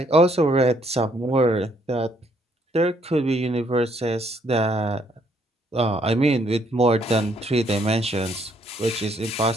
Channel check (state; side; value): normal; both; correlation 0.69